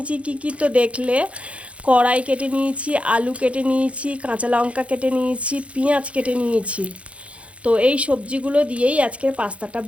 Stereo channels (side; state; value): left; late; 0.062 ms